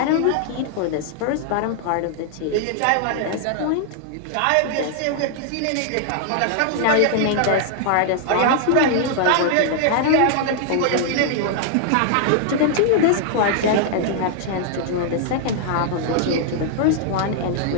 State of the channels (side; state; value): both; different; correlation -0.01